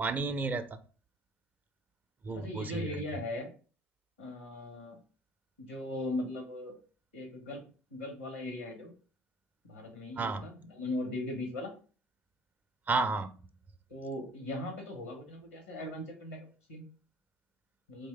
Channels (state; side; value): normal; both; correlation 0.54